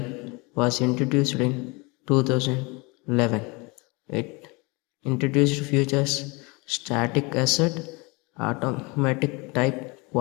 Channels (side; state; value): right; quieter; 27.2 dB